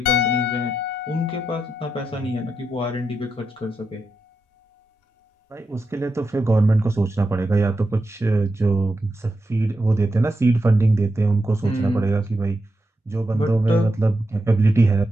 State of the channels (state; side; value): normal; both; correlation 0.86